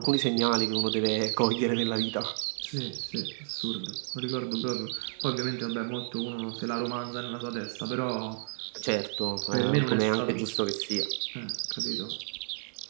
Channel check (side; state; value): left; silent; 57 dB below the other